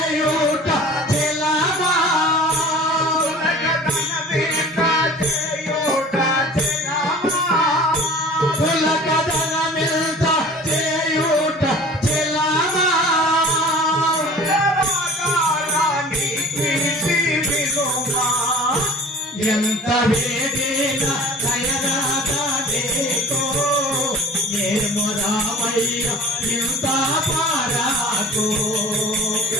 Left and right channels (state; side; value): normal; both; correlation 0.43